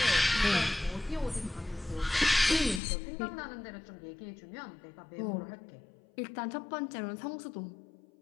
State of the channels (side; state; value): right; drops out; at 2.8 s